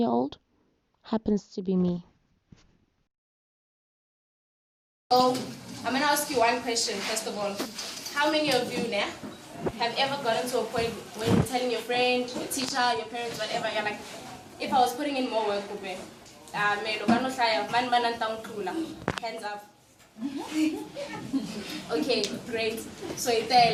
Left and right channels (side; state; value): both; identical; correlation 1.00